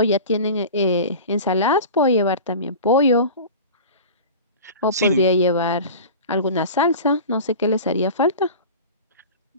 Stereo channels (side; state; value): both; inverted; correlation -0.35